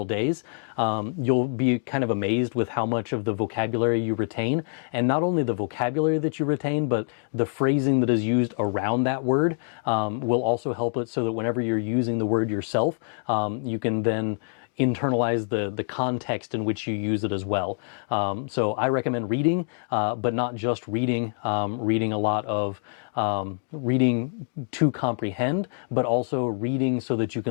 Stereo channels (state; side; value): silent; right; digital silence